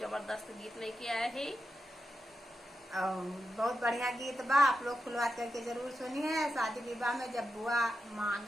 जबरदस्त गीत लेके आए है। बहुत बढ़िया गीत बा, आप लोग खुलवात करके जरूर सुनिए। शादी विवाह में जब बुआ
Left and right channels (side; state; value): both; normal; correlation 0.89